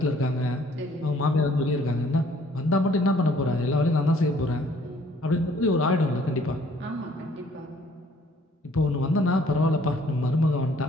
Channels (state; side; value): normal; both; correlation 0.60